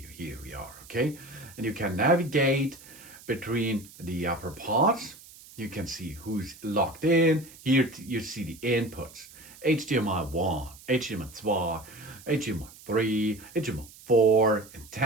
Here we are, okay? And you can navigate between the upper parts. You can see who's logged in. Here you see the inputs. HDMI 1, HDMI 2, HDMI 3, HDMI 4,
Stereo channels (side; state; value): right; noise; hiss, 20 dB below the sound